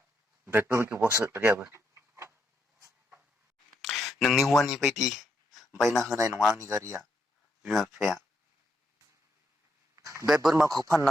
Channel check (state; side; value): normal; both; correlation 0.78